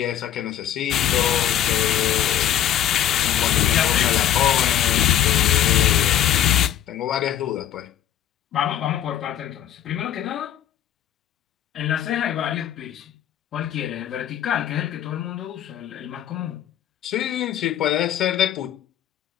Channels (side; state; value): right; quieter; 10.9 dB